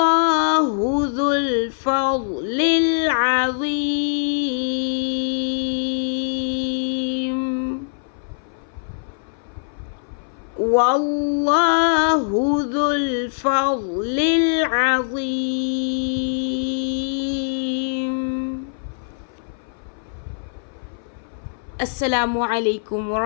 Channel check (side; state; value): right; silent; 59 dB below the other